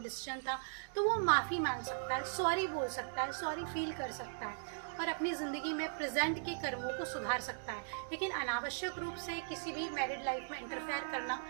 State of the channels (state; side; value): silent; left; digital silence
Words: था, तो वो माफ़ी मांग सकता है, सॉरी बोल सकता है, सॉरी फील कर सकता है और अपनी ज़िंदगी में प्रेजेंट के कर्मों को सुधार सकता है। लेकिन अनावश्यक रूप से किसी भी मैरिड लाइफ में इंटरफेयर करना